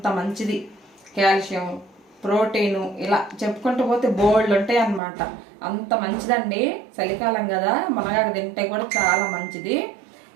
మంచిది. కాల్షియం, ప్రోటీను ఇలా చెప్పుకుంటూ పోతే బోల్డ్ ఉంటాయి అన్నమాట. అంత మంచిదండి. చలికాలం కదా, మునగాకు తింటే కూడా చాలా మంచిది.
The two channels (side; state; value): left; drops out; at 5.0 s